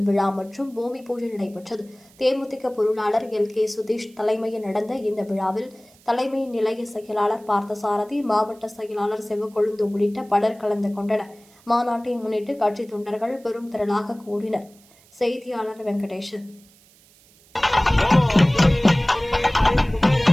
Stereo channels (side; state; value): right; noise; hiss, 28 dB below the sound